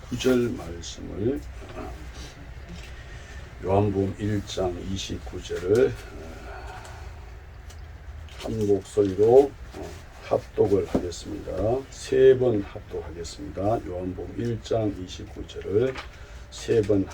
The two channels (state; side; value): identical; both; correlation 1.00